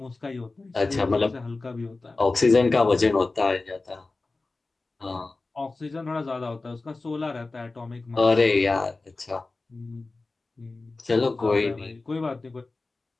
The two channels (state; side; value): quieter; right; 3.5 dB